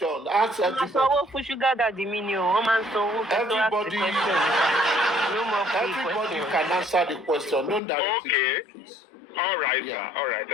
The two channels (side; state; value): right; drops out; at 7.8 s